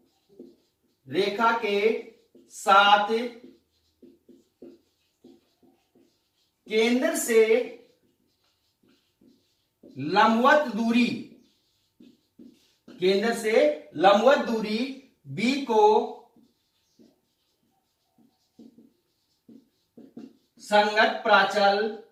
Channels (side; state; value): both; identical; correlation 1.00